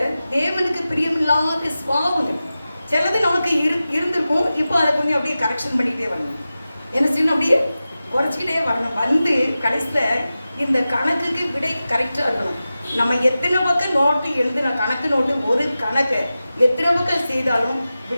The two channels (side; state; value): both; inverted; correlation -0.94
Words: தேவனுக்கு பிரியமில்லாத சுவாபங்கள் சிலது நமக்கு இருந்திருக்கும். இப்போ அதை கொஞ்சம் அப்படியே கரெக்ஷன் பண்ணிகிட்டே வரணும். என்ன செய்யணும், அப்படியே குறைச்சிக்கிட்டே வரணும். வந்து கடைசியில் இந்த கணக்குக்கு விடை கரெக்டாக இருக்கணும். நம்ம எத்தனை பக்கம் நோட்டு எழுதுன கணக்கு நோட்டு ஒரு கணக்கை எத்தனை பக்கம் செய்தாலும்